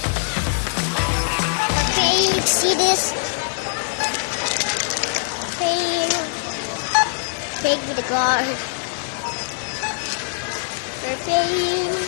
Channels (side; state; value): right; silent; digital silence